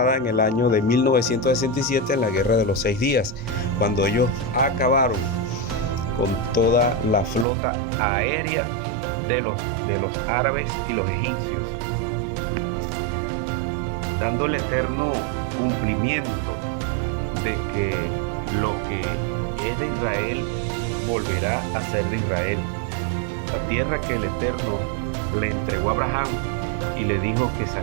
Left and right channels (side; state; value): left; drops out; at 7.5 s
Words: en el año de 1967 en la guerra de los 6 días, cuando ellos acabaron con toda la flota aérea de los árabes y los egipcios, dando el eterno cumplimiento de que lo que es de Israel volverá a ser de Israel. La tierra que el Eterno le entregó a Abraham y le dijo que